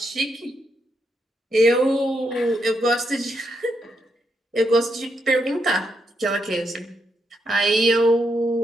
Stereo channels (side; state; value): both; normal; correlation 0.80